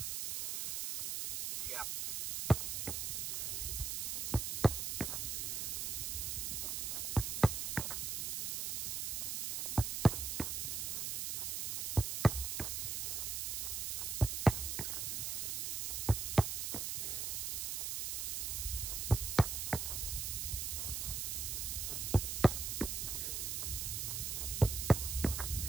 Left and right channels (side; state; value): right; noise; hiss, 1 dB below the sound